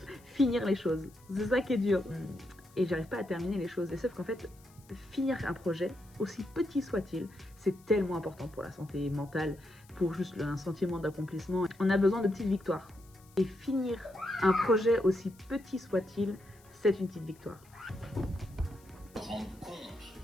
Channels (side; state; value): left; noise; hiss, 28 dB below the sound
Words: finir les choses. C'est ça qui est dur. Et j'arrive pas à terminer les choses. Et sauf qu'en fait, finir un projet, aussi petit soit-il, c'est tellement important pour la santé mentale, pour juste un sentiment d'accomplissement. On a besoin de petites victoires. Et finir un projet aussi petit soit-il, c'est une petite victoire.